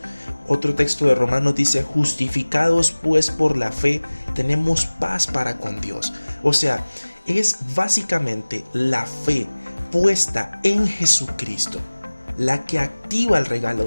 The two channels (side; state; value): both; inverted; correlation -1.00